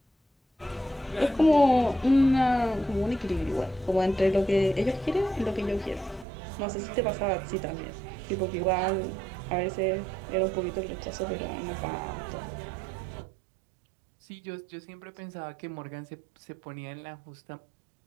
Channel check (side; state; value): left; drops out; at 6.2 s